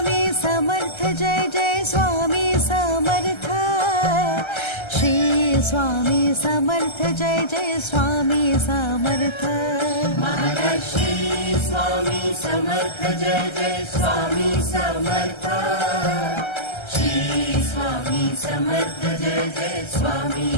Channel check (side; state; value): right; late; 1.3 ms